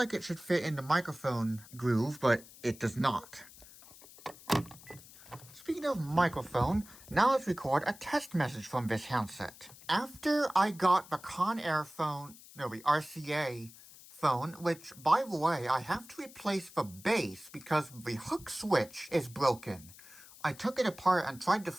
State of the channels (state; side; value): noise; left; hiss, 20 dB below the sound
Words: it should fit in the microphone groove, but it does not. Speaking of microphone, now let's record a test message from this handset. After I got the the RCA phone, which, by the way, I have to replace the base because the hook switch is broken. I took it apart and tried to